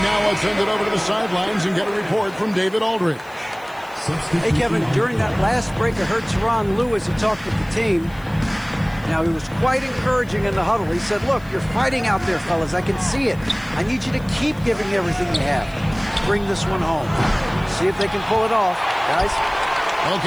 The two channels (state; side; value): noise; left; hiss, 26 dB below the sound